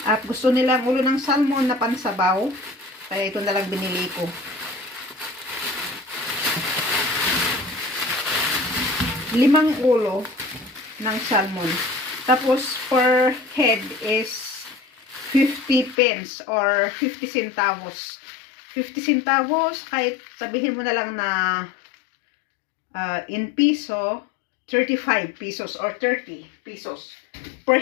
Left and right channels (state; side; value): drops out; right; at 16.0 s